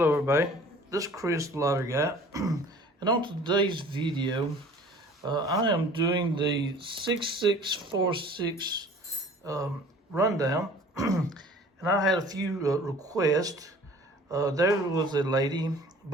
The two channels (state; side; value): normal; both; correlation 0.48